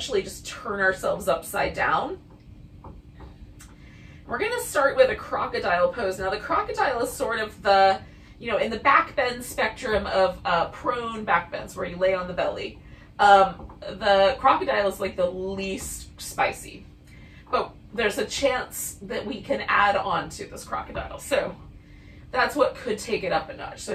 just turn ourselves upside down. We're going to start with a crocodile pose. Now, the crocodile is sort of the, in the back bend spectrum of prone back bends, where you lay on the belly. The crocodile is like the least spicy, but there's a chance that we can add on to this crocodile. So that's what could take it up a notch. So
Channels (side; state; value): both; identical; correlation 1.00